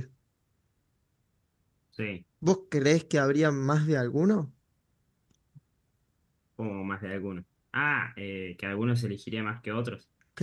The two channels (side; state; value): both; identical; correlation 1.00